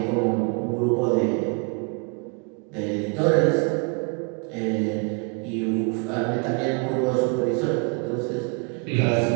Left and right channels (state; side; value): quieter; left; 34.3 dB